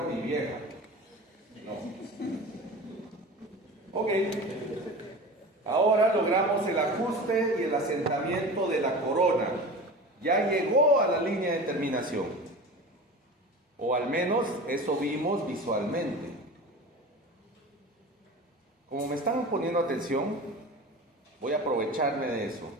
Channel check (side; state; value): both; normal; correlation 0.34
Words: y vieja. No. Ok. Ahora logramos el ajuste y el asentamiento de la corona. Ya llegó a la línea de terminación. O al menos eso vimos visualmente. Como me están poniendo atención, voy a aprovecharme de eso.